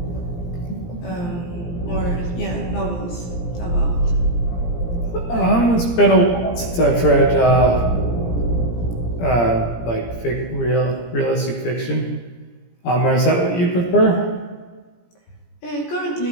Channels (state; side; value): late; right; 17 ms